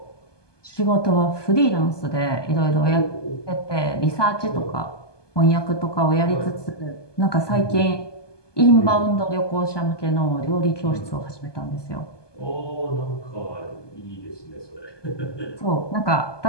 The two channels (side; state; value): right; late; 1.2 ms